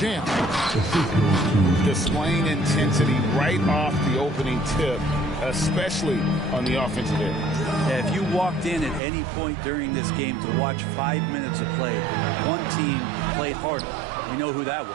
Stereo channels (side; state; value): left; drops out; at 9.0 s